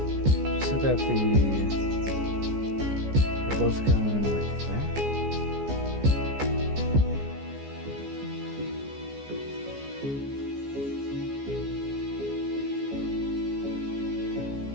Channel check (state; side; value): late; left; 14 ms